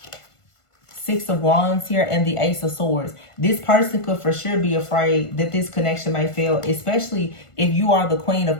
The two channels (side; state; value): right; late; 1.5 ms